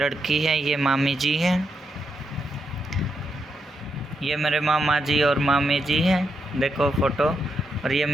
है, ये मामी जी हैं, ये मेरे मामा जी और मामी जी हैं, देखो फ़ोटो। और ये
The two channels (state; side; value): normal; both; correlation 0.82